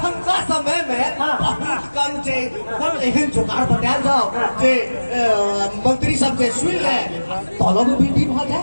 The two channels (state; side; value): inverted; both; correlation -1.00